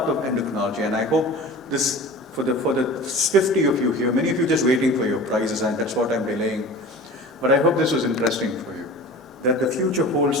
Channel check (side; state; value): both; normal; correlation 0.38